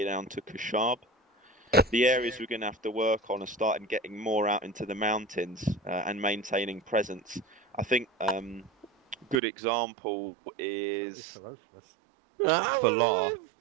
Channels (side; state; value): left; drops out; at 9.3 s